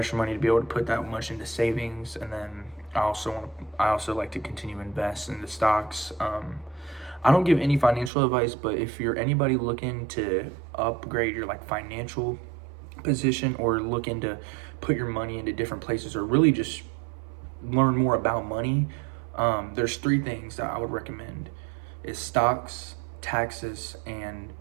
money to be able to put that much into savings, and then I also like to continue to invest in the stocks. I don't give any financial advice, but if you're anybody looking to upgrade your like financial position, or looking to put your money into different places, or really just learn more about money, there's 3 things that I would recommend: is stocks, taxes, and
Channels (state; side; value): drops out; left; at 8.1 s